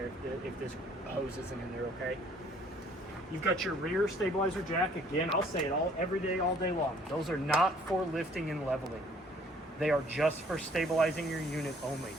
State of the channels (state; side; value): normal; both; correlation 0.59